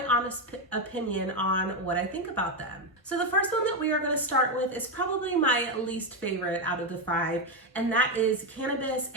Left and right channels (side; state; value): both; normal; correlation 0.07